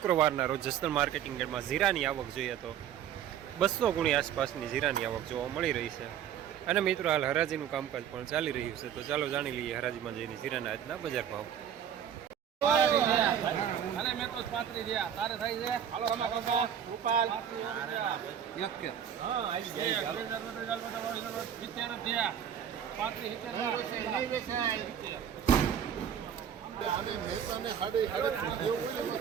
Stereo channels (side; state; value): left; quieter; 9.2 dB